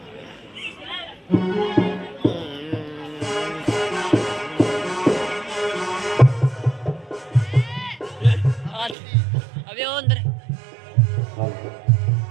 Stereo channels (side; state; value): left; drops out; at 9.0 s